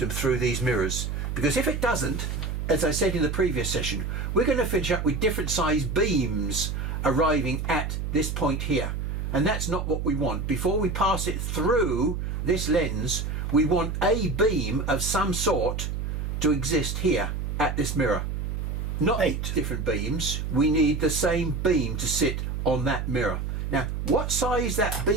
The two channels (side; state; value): right; noise; hum, 3 dB below the sound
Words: through these mirrors. Because if it doesn't, as I said in the previous session, we're going to finish up with different size beams arriving at this point here. And that's not what we want. Before we pass it through this lens, we want a beam of some sort to exist here at this mirror. Not 8 different beams, we need the same beam to sit on that mirror. Now, what size that